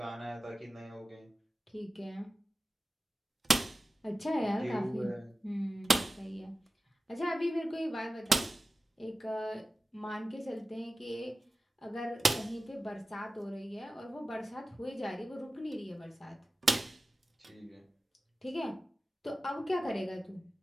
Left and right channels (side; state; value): both; normal; correlation 0.96